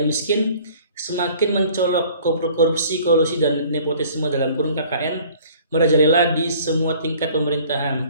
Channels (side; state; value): both; inverted; correlation -0.51